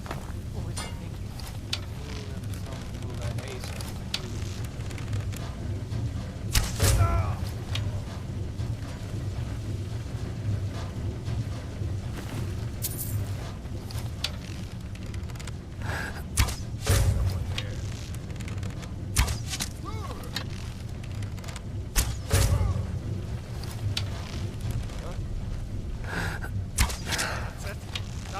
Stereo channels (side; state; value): both; identical; correlation 1.00